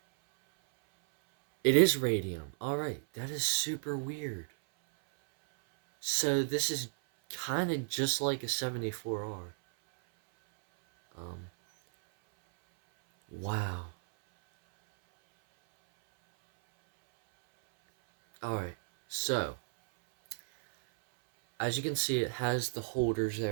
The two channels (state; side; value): silent; left; 56 dB below the other